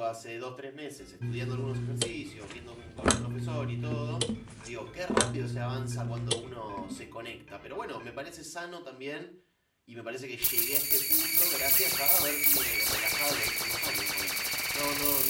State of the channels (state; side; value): identical; both; correlation 1.00